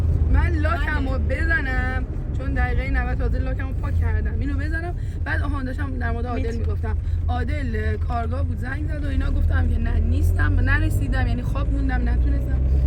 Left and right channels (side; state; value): both; identical; correlation 1.00